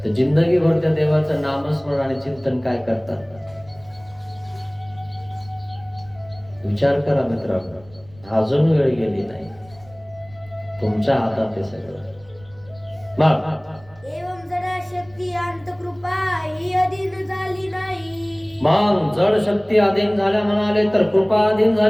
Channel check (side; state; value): right; noise; rumble, 25 dB below the sound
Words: तर जिंदगीभर त्या देवाचं नामस्मरण आणि चिंतन काय करतात? विचार करा मित्रांनो, अजून वेळ गेली नाही, तुमच्या हातात आहे सगळं. एवं जडा शक्ती अंत कृपा ही अधीन झाली नाही. मग जड शक्ती अधीन झाल्या म्हणाले तर कृपा अधीन